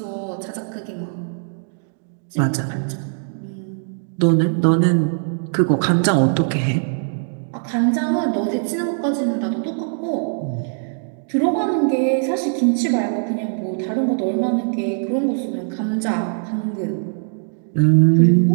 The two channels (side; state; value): left; silent; digital silence